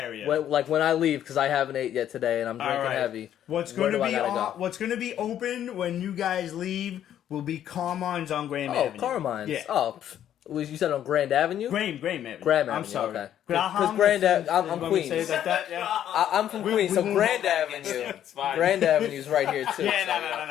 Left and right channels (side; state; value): right; quieter; 10.7 dB